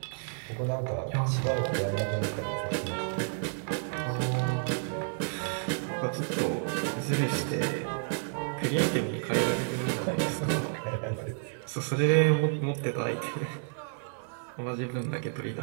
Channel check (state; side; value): silent; left; digital silence